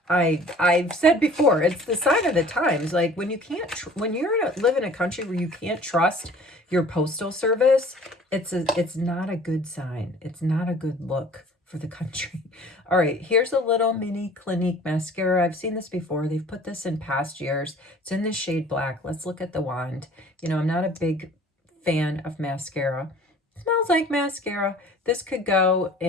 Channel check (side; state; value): both; normal; correlation 0.49